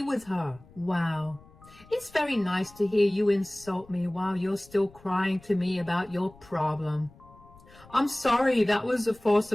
with her. Wow. It's very nice to hear you insult me while you're still crying to me about your problem. I'm sorry, that was a force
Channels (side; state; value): left; noise; rumble, 24 dB below the sound